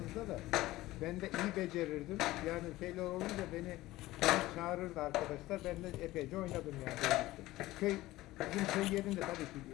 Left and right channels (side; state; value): right; quieter; 17.4 dB